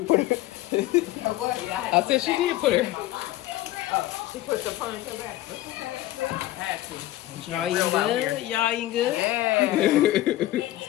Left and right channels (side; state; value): right; quieter; 15.6 dB